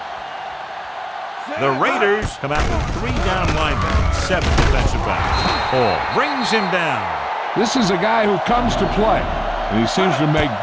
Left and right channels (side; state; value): both; identical; correlation 1.00